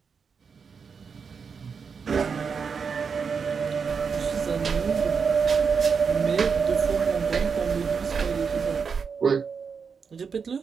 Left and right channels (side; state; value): left; quieter; 5.9 dB